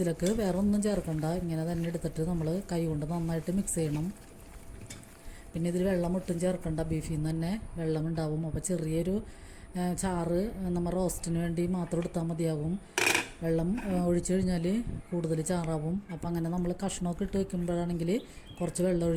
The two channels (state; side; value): identical; both; correlation 1.00